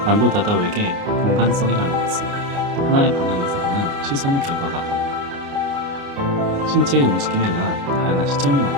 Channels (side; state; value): left; late; 29 ms